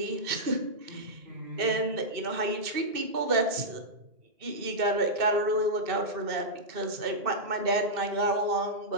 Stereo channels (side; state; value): left; late; 2.6 ms